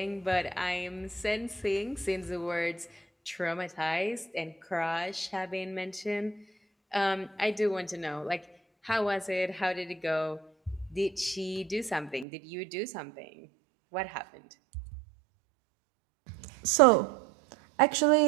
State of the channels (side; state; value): left; drops out; at 12.2 s